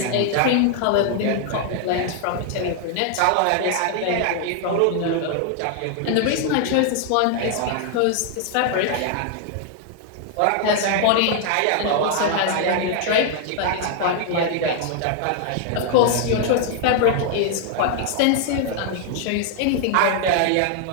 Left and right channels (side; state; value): both; different; correlation 0.00